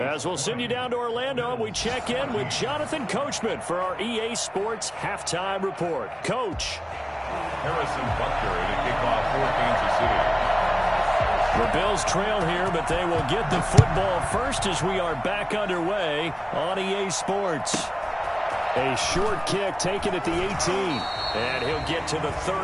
we'll send you down to Orlando, we check in with Jonathan Coachman for our EA Sports Halftime Report. Coach. Harrison Butker to kick off for Kansas City. The Bills trail here, but they will get the football first as we are back underway on EA Sports. A short kick taken at the 18. And he'll get to the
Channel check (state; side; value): identical; both; correlation 1.00